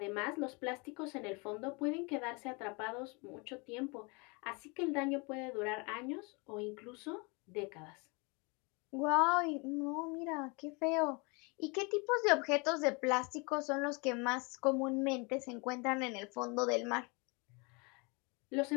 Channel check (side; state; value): right; quieter; 29.9 dB